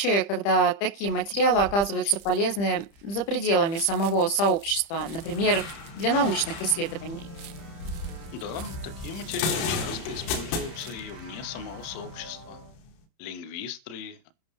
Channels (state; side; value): late; right; 30 ms